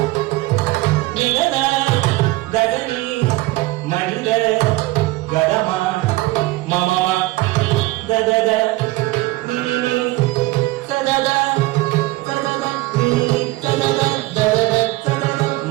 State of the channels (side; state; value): left; quieter; 19.8 dB